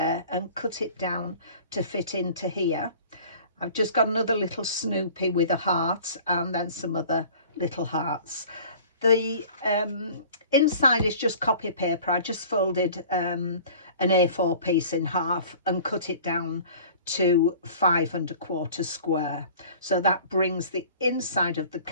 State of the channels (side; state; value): both; inverted; correlation -0.45